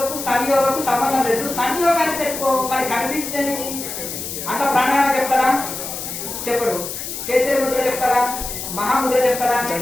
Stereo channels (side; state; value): left; noise; hiss, 7 dB below the sound